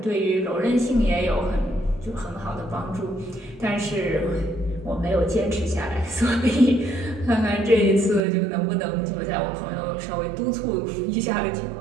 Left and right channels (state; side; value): drops out; left; at 8.2 s